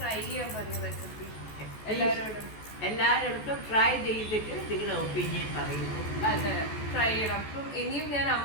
ചെയ്യാൻ പറയൂ റെസിപ്പി എല്ലാവരോടും ട്രൈ ചെയ്തിട്ട് നിങ്ങളുടെ ഒപ്പീനിയൻ പറയുന്നു. അതെ, ട്രൈ ചെയ്യണം. അപ്പം ഇനിയും ഞാൻ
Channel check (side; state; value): right; late; 14 ms